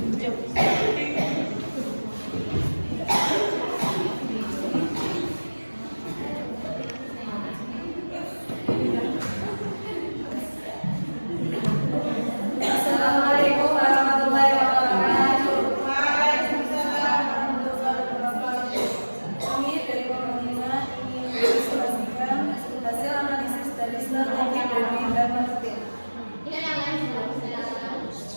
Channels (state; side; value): inverted; both; correlation -1.00